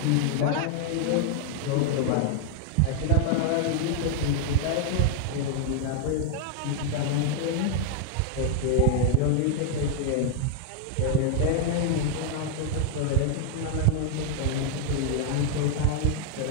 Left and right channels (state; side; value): different; both; correlation 0.00